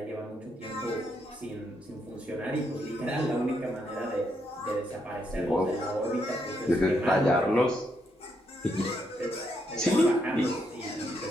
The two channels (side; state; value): both; normal; correlation 0.78